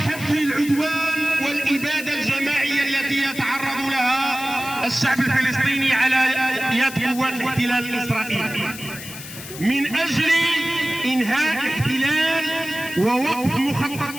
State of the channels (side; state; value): left; noise; hiss, 12 dB below the sound